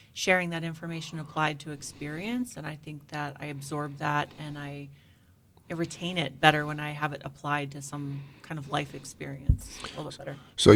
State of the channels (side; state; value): both; identical; correlation 1.00